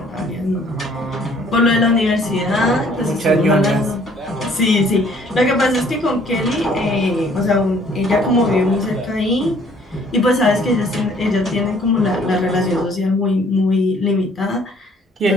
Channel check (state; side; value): normal; both; correlation 0.59